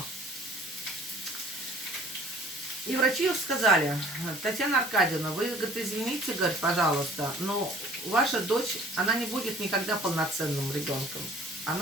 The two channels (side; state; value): both; normal; correlation 0.53